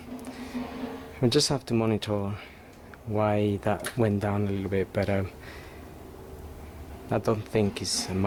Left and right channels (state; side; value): identical; both; correlation 1.00